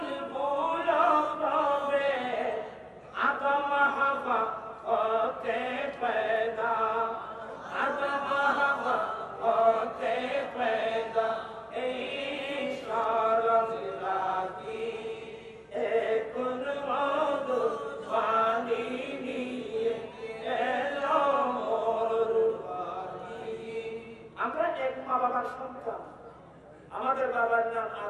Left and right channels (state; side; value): identical; both; correlation 1.00